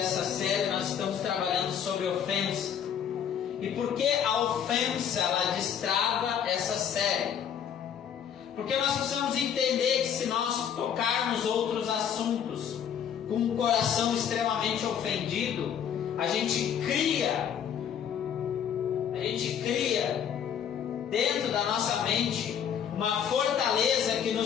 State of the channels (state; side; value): quieter; right; 8.5 dB